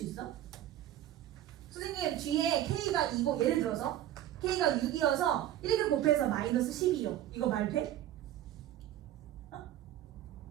있어? 선생님 뒤에 K가 2고 예를 들어서 K가 6이어서 이렇게 곱해서 마이너스 10이요. 이거 말 돼? 어?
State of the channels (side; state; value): left; quieter; 12.5 dB